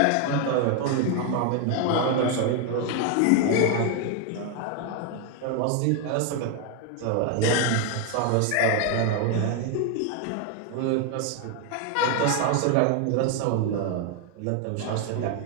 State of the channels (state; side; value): different; both; correlation 0.01